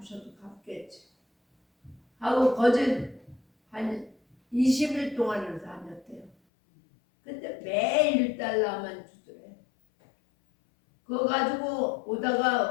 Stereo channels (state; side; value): drops out; right; at 6.4 s